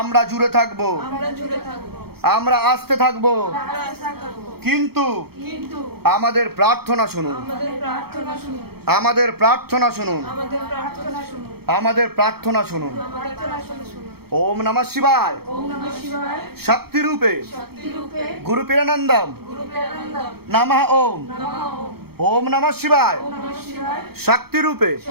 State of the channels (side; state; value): left; late; 0.96 ms